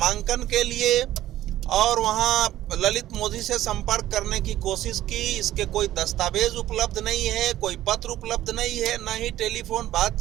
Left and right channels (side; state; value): left; quieter; 13.9 dB